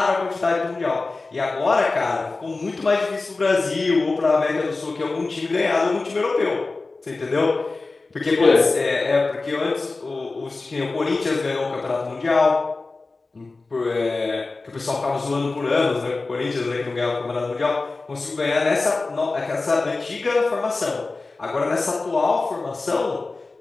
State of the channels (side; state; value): right; quieter; 3.6 dB